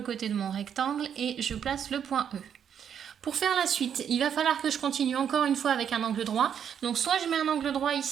de mon rectangle et je place le point E. Pour faire la suite, il va falloir que je continue encore une fois avec un angle droit. Donc soit je mets un angle droit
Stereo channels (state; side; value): quieter; left; 8.4 dB